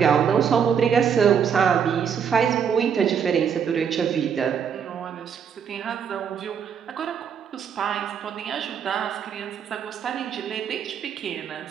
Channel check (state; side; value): quieter; left; 7.5 dB